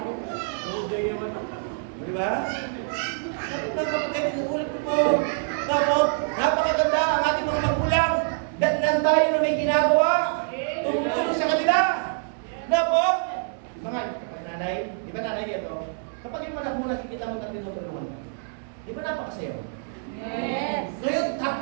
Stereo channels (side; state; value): left; silent; 61 dB below the other